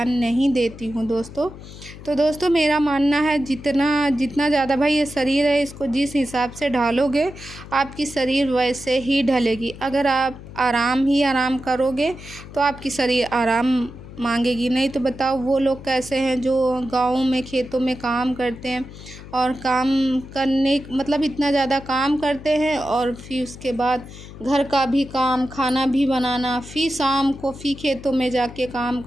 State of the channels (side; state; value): left; noise; hum, 15 dB below the sound